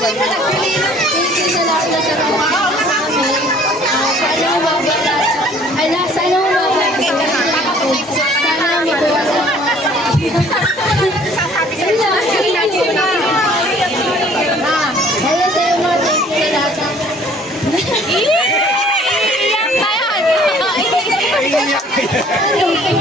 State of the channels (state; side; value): normal; both; correlation 0.55